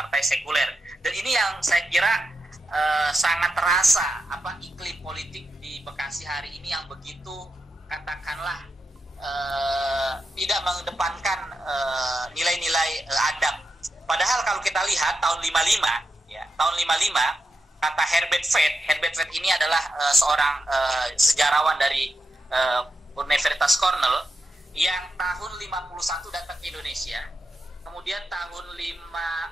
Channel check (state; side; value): normal; both; correlation 0.87